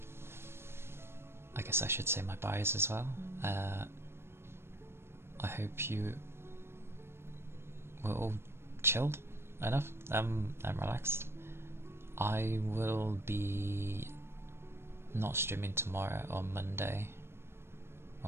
I guess I should say my bias as well. I hope you were all chilled enough and relaxed. I will be not streaming tomorrow or Monday.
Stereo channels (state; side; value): late; left; 0.12 ms